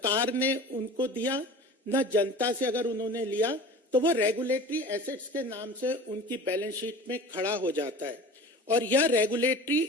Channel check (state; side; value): normal; both; correlation 0.38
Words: ने उनको दिया, ना जनता से अगर उन्होंने लिया, तो वो रेगुलेटरी एसेट्स के नाम से उनकी बैलेंस शीट में खड़ा हो जाता है। और यह